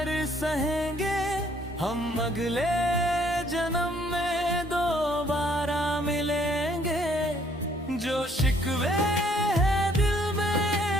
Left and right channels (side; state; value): both; normal; correlation 0.64